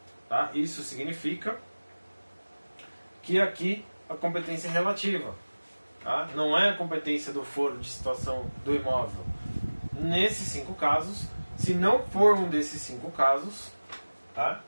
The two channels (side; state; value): both; inverted; correlation -1.00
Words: Tá? Isso significa que aqui a competência é relativa. Tá? Não é a competência do foro de situação do imóvel. Nesses 5 casos, se não for um desses 5 casos, tá?